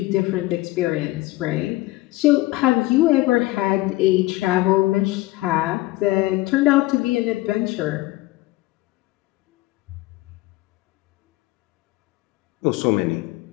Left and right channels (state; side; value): quieter; right; 18.9 dB